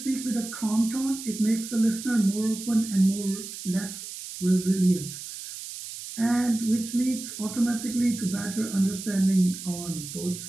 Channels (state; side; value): noise; right; hiss, 10 dB below the sound